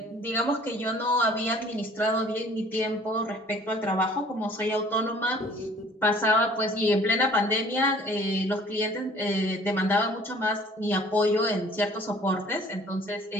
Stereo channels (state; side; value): normal; both; correlation 0.52